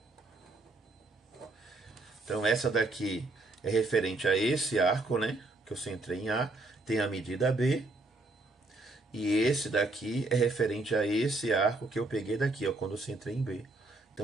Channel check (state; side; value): quieter; left; 3.0 dB